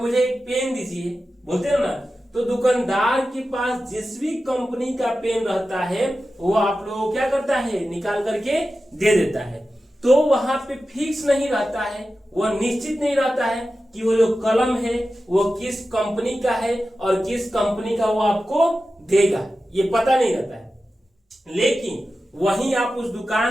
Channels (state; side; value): normal; both; correlation 0.93